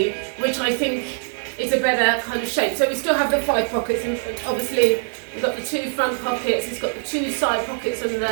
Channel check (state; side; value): silent; left; 64 dB below the other